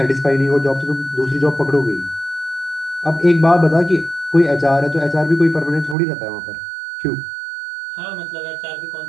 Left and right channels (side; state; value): left; drops out; at 6.0 s